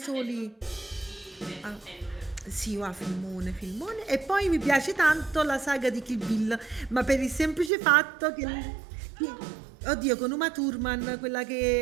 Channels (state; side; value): drops out; left; at 7.7 s